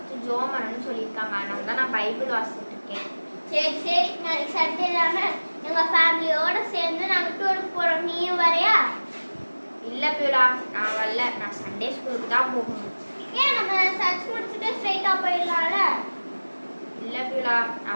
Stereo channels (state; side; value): inverted; both; correlation -1.00